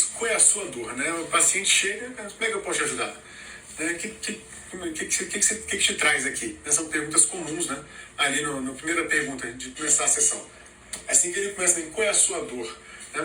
Qual é a sua dor? Né? O paciente chega, como é que eu posso te ajudar? O que te traz aqui? Essas são perguntas comuns, né? Ali na primeira pergunta de começar a sessão. Assim que ele começa, qual é a sua dor?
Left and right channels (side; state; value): both; identical; correlation 1.00